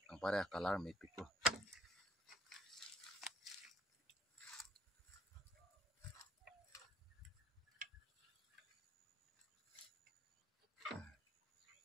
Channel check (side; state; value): both; normal; correlation 0.62